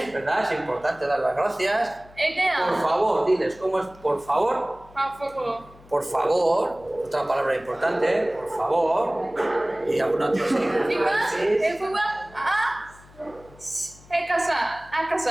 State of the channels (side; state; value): left; noise; hum, 24 dB below the sound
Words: ¿verdad? Es importante dar las gracias. Edea. Por favor, diles, ¿cómo es por favor? Por favor. Por favor, otra palabra importante, por favor. Y alguna otra sí. El fútbol a casa.